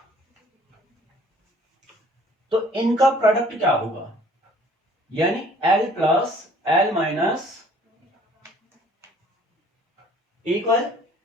तो इनका प्रोडक्ट क्या होगा? यानी L plus L minus equal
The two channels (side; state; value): both; normal; correlation 0.55